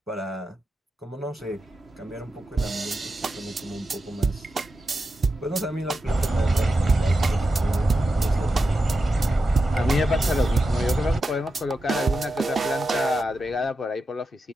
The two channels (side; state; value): both; normal; correlation 0.89